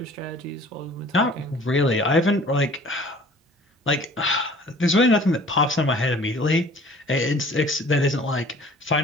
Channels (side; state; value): both; normal; correlation 0.49